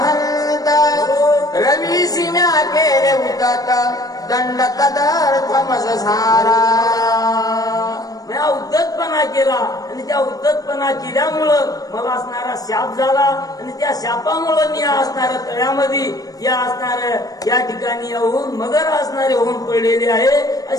रवीसी म्या केले उदत दंड तदर्थमस झाला. म्या उद्धतपणा केला आणि त्या उद्धतपणा केल्यामुळं मला असणारा शाप झाला आणि त्या शापामुळे मी असणाऱ्या तळ्यामध्ये या असणाऱ्या या ठिकाणी येऊन मगर असणारे होऊन पडलेले आहे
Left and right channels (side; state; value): right; late; 0.18 ms